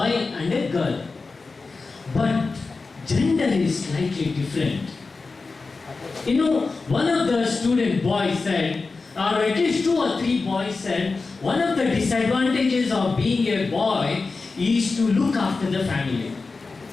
and a girl. But gender is slightly different. You know, one of the student boys said, or at least 2 or 3 boys said, one of the disadvantages of being a boy is to look after the family,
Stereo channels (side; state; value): right; quieter; 4.0 dB